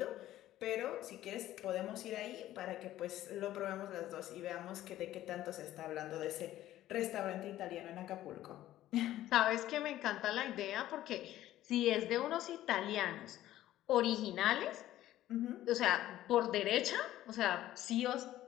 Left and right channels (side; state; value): right; quieter; 13.9 dB